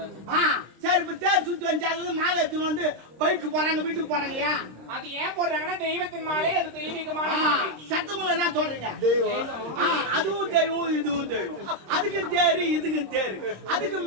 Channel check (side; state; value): left; late; 26 ms